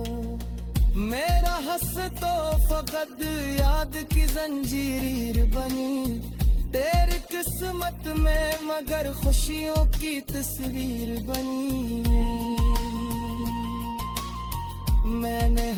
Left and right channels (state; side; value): identical; both; correlation 1.00